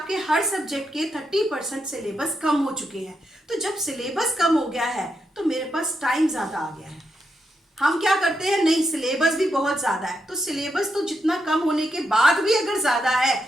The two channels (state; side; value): normal; both; correlation 0.83